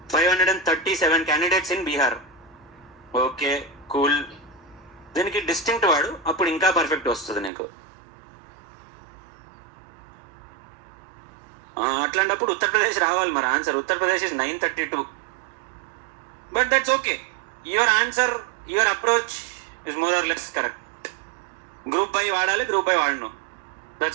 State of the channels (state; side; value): drops out; left; at 7.5 s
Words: 537 candidates in Bihar. Okay, cool. దీనికి distinct వాడు, అప్పుడు ఇంకా perfect వస్తుంది నీకు. అట్లాంటప్పుడు ఉత్తరప్రదేశ్ రావాలి మరి answer. Uttar Pradesh is 932. But that's okay. Your answer, your approach is more or less correct. Group by వాడాలి, గ్రూప్ బై వాడను,